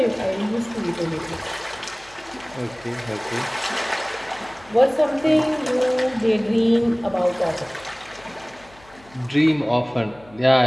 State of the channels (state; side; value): noise; left; hum, 26 dB below the sound